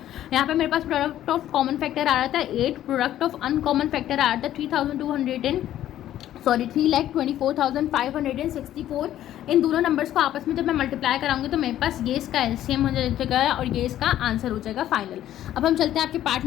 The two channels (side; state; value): right; quieter; 12.4 dB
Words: यहाँ पे मेरे पास प्रोडक्ट ऑफ कॉमन फैक्टर आ रहा था 8, प्रोडक्ट ऑफ अनकॉमन फैक्टर आ रहा था 3,24,564। इन दोनों नंबर्स को आपस में जब मैं मल्टीप्लाई कराऊंगी तो मेरे पास ये इसका LCM हो जाएगा और ये इसका आंसर हो जाएगा फाइनल। अब हम चलते हैं आपके पार्ट